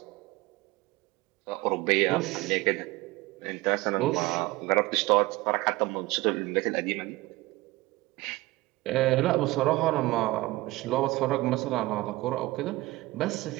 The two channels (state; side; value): quieter; left; 19.8 dB